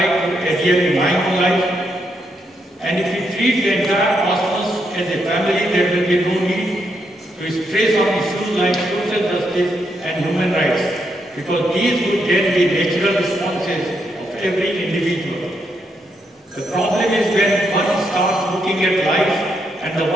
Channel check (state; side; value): normal; both; correlation 0.79